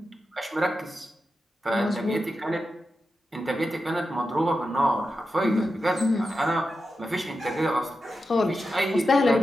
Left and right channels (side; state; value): both; normal; correlation 0.90